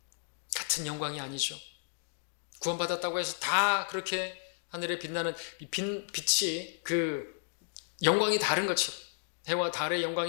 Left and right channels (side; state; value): right; silent; digital silence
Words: 같은 영광이 아니죠. 구원받았다고 해서 다 그렇게 하늘에 빛나는 빛이 그 영광이 다른 것처럼, 해와 달의